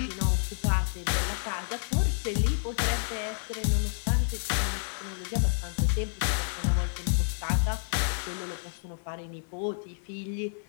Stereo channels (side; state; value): right; silent; 58 dB below the other